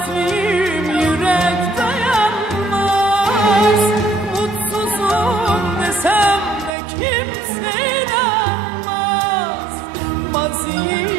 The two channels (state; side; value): drops out; left; at 6.7 s